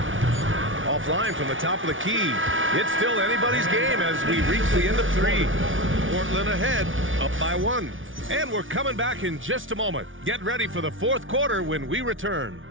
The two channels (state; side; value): late; left; 0.57 ms